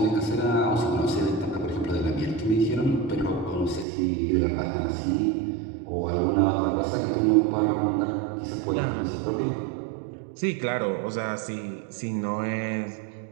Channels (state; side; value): drops out; left; at 3.9 s